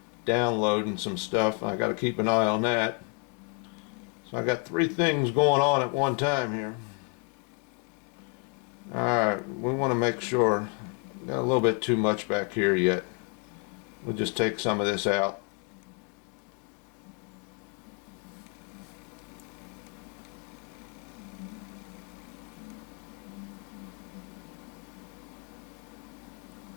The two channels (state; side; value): quieter; right; 37.6 dB